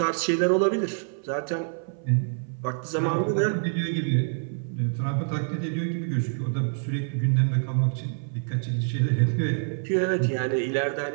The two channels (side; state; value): left; silent; 61 dB below the other